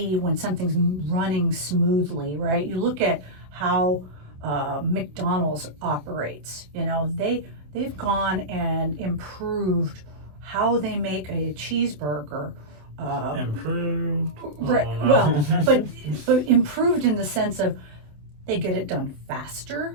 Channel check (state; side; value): late; left; 27 ms